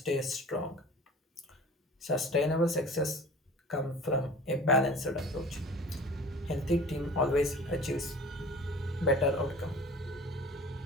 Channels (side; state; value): both; normal; correlation 0.42